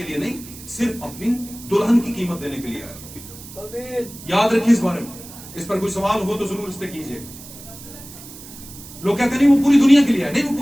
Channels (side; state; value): right; noise; hiss, 16 dB below the sound